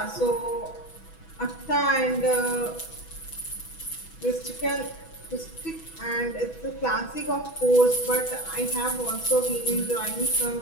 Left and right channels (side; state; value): right; late; 6.1 ms